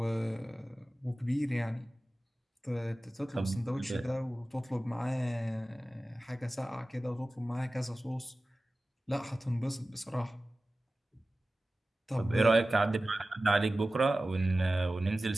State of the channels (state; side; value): normal; both; correlation 0.96